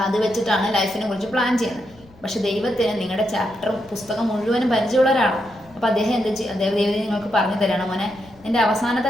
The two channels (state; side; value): noise; left; rumble, 25 dB below the sound